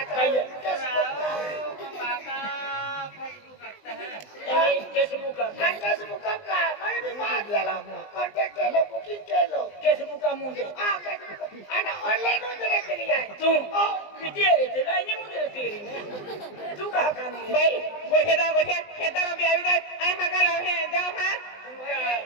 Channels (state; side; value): late; right; 20 ms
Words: चाहिए काका फेसबुक करता है ये फेसबुक का फेसबुक का मैं भी मार दिया कांटेक्ट के लो बुकिंग के लो फेसबुक का मुंडे हां ana online उधर के लिए तू पिटी रे ते लाइन मुंडे तेरी तू कहां का नहीं भाई गोठे खेतर में आवी जाए आई मगा लावे जाओ हां